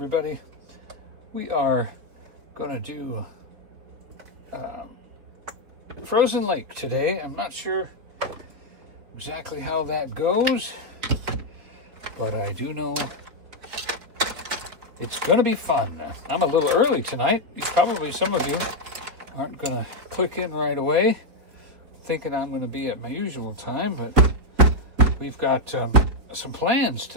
we are gonna do Frozen Lake today. I'm not sure exactly how that goes, but I do know it's gonna be fun. I'm a little early tonight. Probably some of you aren't gonna click in right away thinking I'm gonna be at my usual time, but we've got some plans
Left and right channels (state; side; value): late; left; 4.9 ms